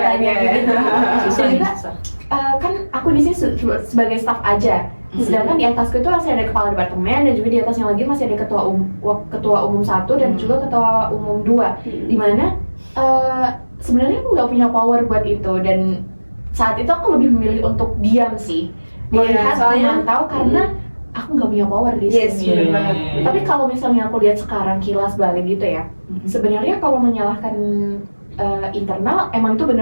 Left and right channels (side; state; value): both; inverted; correlation -1.00